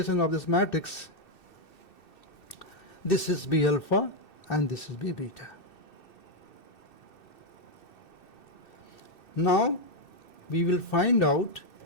of this matrix, this is B alpha and this is B beta. Now we will find out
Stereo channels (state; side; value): late; right; 2.6 ms